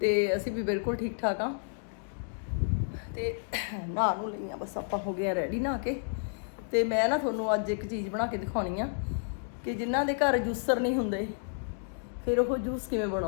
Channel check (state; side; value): silent; right; digital silence